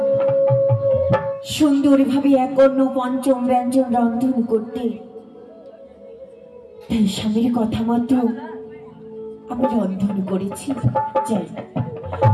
সুন্দরভাবে এক অন্য পঞ্চম ব্যঞ্জন রন্ধন করতে। তাই স্বামীর কথা মতো আমি রন্ধন করেছি। যাই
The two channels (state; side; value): identical; both; correlation 1.00